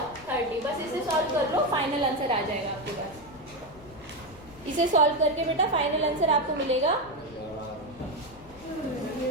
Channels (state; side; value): noise; left; rumble, 22 dB below the sound